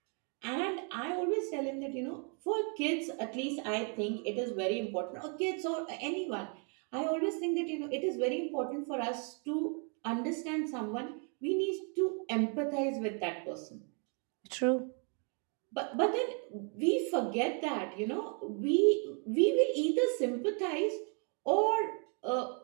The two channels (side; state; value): left; quieter; 39.1 dB